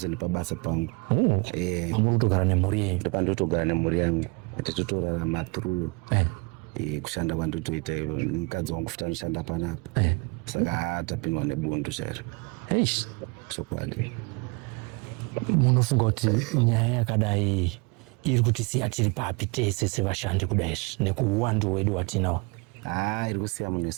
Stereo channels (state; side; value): quieter; left; 29.1 dB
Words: nepabasa pangu. Muri kutogara nemhuri yenyu? Ndopandotogara nemhuri yangu. Tichitorarama through kushanda kwandotoita mukadzi wangu futi anoshanda panapa. Saka tapindwa nebundu chairo. Chokwadi. Munofunga kuti nyaya yakadai iri kutisiya tiri papi tese sevashandi kudai nekuuwandu wedu watinawo? Iri kusiya munhu